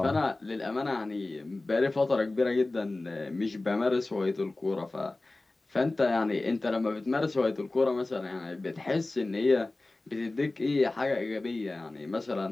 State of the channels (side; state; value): right; quieter; 3.0 dB